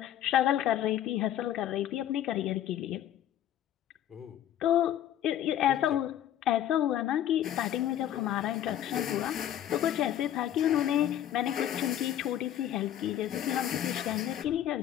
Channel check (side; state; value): right; quieter; 11.4 dB